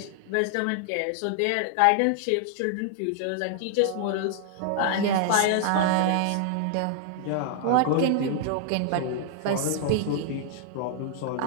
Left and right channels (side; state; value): both; different; correlation 0.00